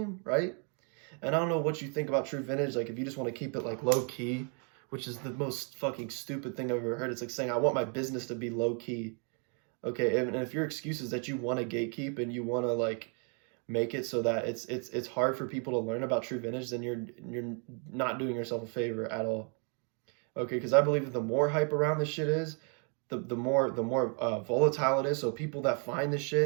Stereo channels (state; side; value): quieter; left; 39.6 dB